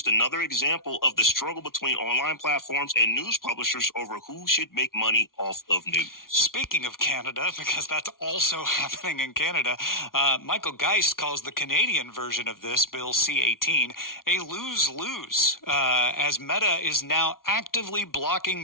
another example of the struggle between online platforms and news publishers over who should make money off of news. Speaking of Canada, because that's also happening in Canada, Michael Geist calls the Canadian version of this, Bill C-18, a lose-lose, as Meta is now actively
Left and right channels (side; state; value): right; late; 0.92 ms